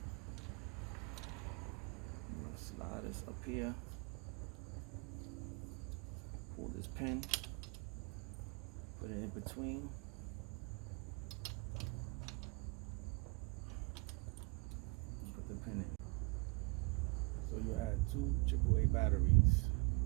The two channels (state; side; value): quieter; left; 29.2 dB